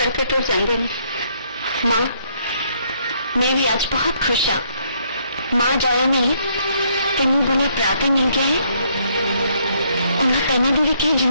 टुर जाते हैं। मां, मैं भी आज बहुत खुश हाँ। मां जाया नहीं, तेन बोले भरा तो मिल गया है। उन्हें तेना की भी की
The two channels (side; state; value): both; inverted; correlation -0.69